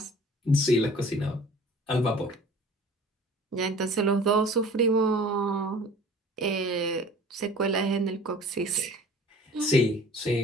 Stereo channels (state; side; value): normal; both; correlation 0.47